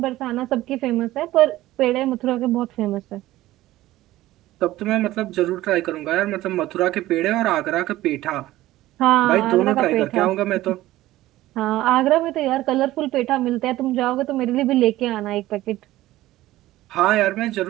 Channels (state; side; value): quieter; left; 16.0 dB